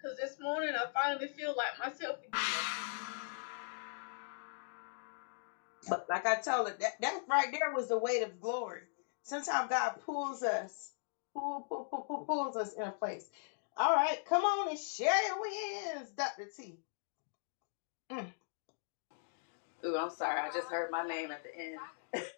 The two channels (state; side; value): silent; right; digital silence